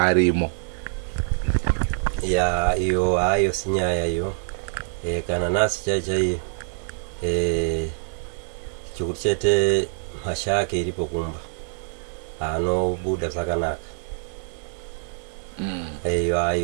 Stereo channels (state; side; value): silent; left; 62 dB below the other